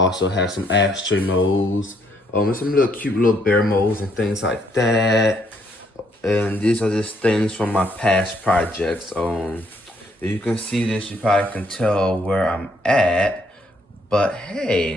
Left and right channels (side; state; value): both; normal; correlation 0.69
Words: have some ashtray molds. And some little cute little bear molds and things like that. And these are just things from my past projects. If you can see this, you probably can tell where I'm at. But